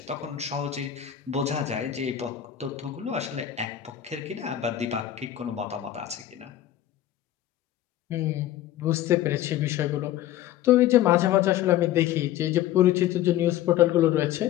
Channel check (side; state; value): right; quieter; 12.3 dB